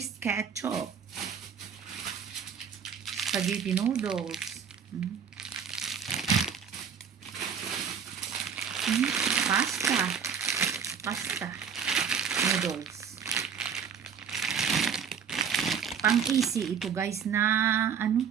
ketchup. Spaghetti noodles. Pasta. Pasta. Noodles. Pang easy ito guys na ano?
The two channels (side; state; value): left; quieter; 7.2 dB